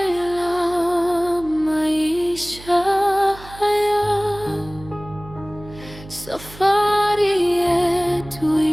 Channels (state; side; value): noise; right; hum, 18 dB below the sound